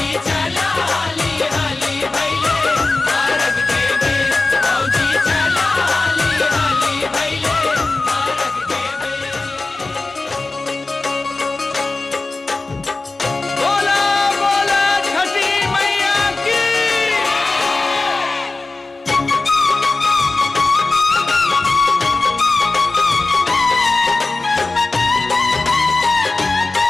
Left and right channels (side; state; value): right; quieter; 3.4 dB